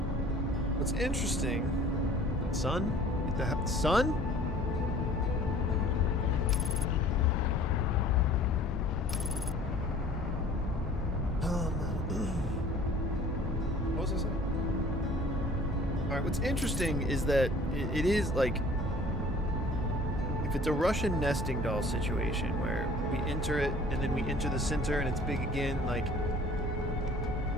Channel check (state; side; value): normal; both; correlation 0.50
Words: What's interesting? Sun? Get the sun? What was I saying? All right. What's interesting is that it is like, if it's a Russian nesting doll situation where we enter it and then we enter the center and it's big again, like,